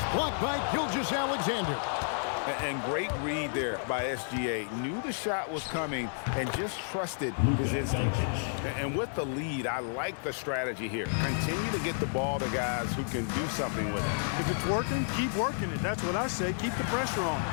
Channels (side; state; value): right; silent; digital silence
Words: blocked by Gilgeous-Alexander. And great read there by SGA. Knew the shot was coming and just trusted his instincts. And with the lead, I like the strategy here. Continue to get the ball to guys who can do something with it. If it's working, keep working it. That's what I say. Keep the pressure on.